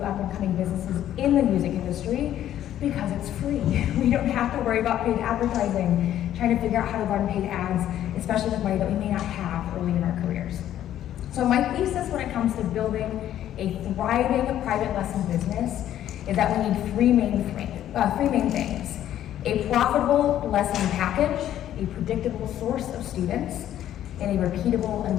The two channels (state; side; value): quieter; right; 11.7 dB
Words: up-and-coming businesses in the music industry, because it's free. We don't have to worry about paid advertising, trying to figure out how to run paid ads, especially with money that we may not have early in our careers. So my thesis when it comes to building a thriving private lesson business is that we need three main things: a profitable lesson package, a predictable source of students, and a repeatable